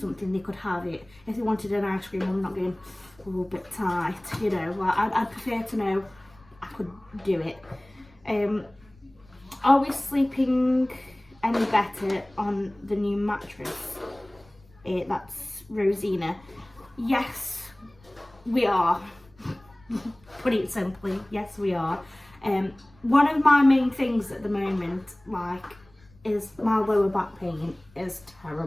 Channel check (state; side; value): noise; left; rumble, 28 dB below the sound